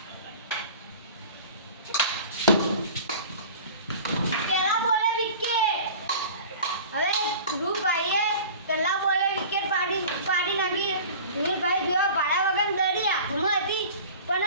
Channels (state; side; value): inverted; both; correlation -0.40